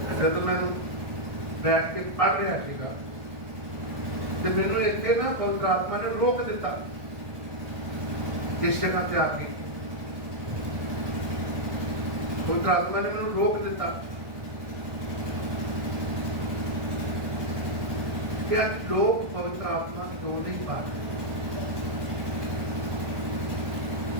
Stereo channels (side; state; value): left; late; 1.6 ms